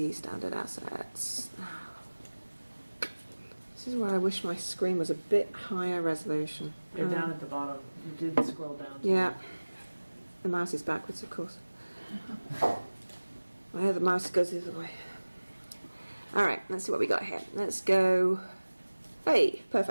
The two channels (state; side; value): inverted; both; correlation -1.00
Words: standard assets? This is where I wish my screen was a bit higher resolution. You're down at the bottom. You did scroll down. Yeah. The mouse is backwards, of course. The mouse goes the other way. Alright, let's see what we got here. Let's go... Hey,